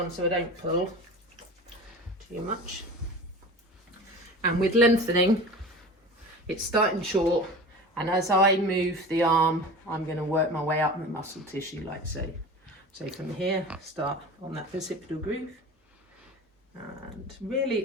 so I don't pull too much. And with lengthening, it's starting short, and as I move the arm, I'm going to work my way up the muscle tissue like so. So from here, start on that bicipital groove, and really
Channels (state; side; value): normal; both; correlation 0.35